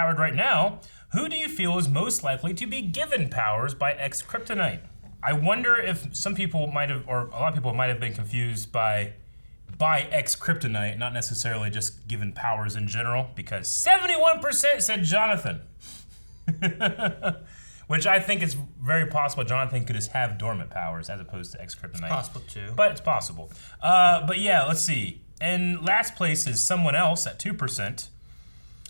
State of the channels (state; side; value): inverted; both; correlation -1.00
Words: right now, who do you feel is most likely to be given powers by ex-kryptonite? I wonder if some people might have, or a lot of people might have been confused by ex-kryptonite, not necessarily just given powers in general, because 71% said Jonathan. Which I think is very possible. Jonathan could just have dormant powers as opposed to ex-kryptonite. It's possible too. But it's possible. But yeah, let's see. In last place is someone else at 2%,